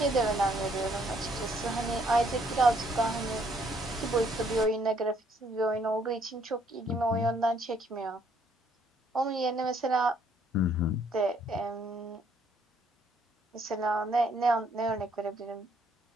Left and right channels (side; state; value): both; normal; correlation 0.67